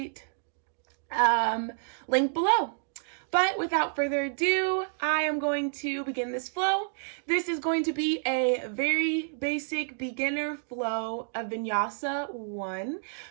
link below. But without further ado, I am going to begin this flow. This is going to be a very basic beginner flow of Vinyasa 1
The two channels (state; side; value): silent; left; digital silence